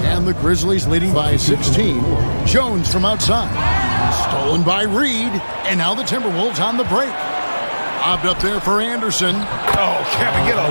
And the Grizzlies leading by 16. Jones from outside. Stolen by Reed. And now the Timberwolves on the break. Lobbed up there for Anderson. Oh, can we get a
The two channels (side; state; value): both; inverted; correlation -1.00